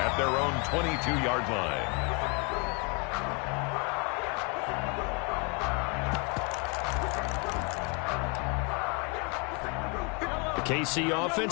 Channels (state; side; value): quieter; right; 32.4 dB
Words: their own 22-yard line. KC